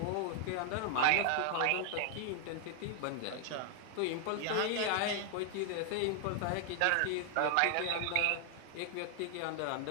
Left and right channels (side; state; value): both; different; correlation 0.00